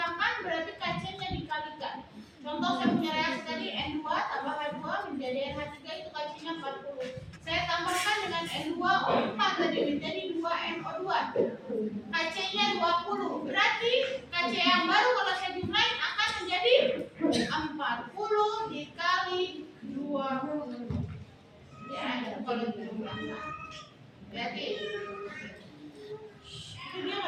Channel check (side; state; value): both; identical; correlation 1.00